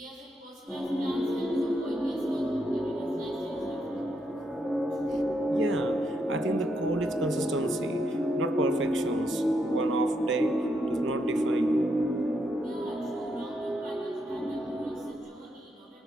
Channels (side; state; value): both; normal; correlation 0.79